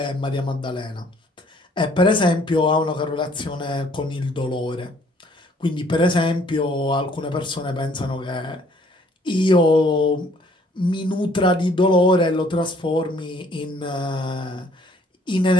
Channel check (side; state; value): both; normal; correlation 0.61